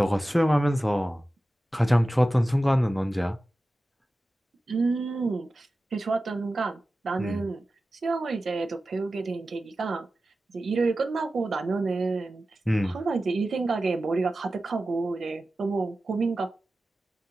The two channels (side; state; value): both; normal; correlation 0.94